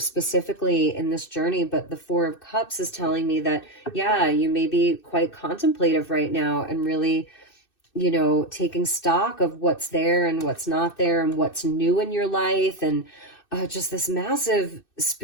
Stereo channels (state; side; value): late; right; 2.6 ms